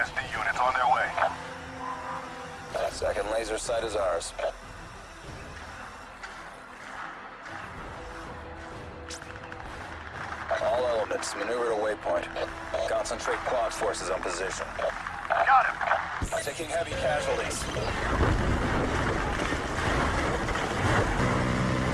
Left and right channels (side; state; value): both; identical; correlation 1.00